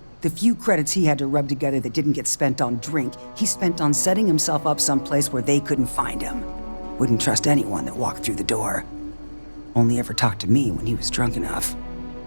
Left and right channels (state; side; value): inverted; both; correlation -1.00